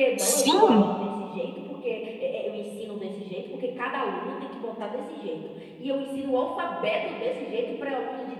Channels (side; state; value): both; identical; correlation 1.00